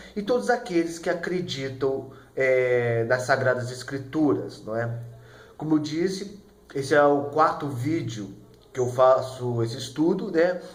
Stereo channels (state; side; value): identical; both; correlation 1.00